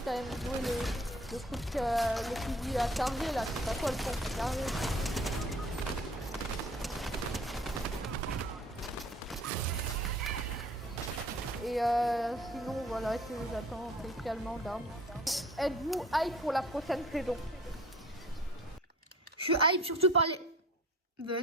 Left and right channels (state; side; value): normal; both; correlation 0.50